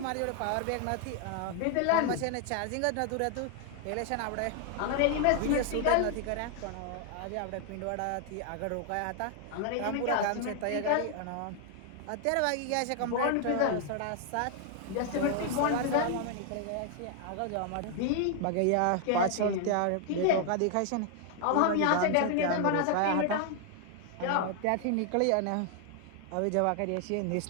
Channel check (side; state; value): both; different; correlation 0.00